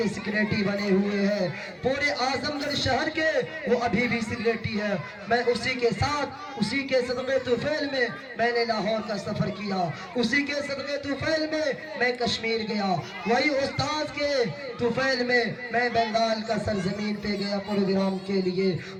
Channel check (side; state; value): both; identical; correlation 1.00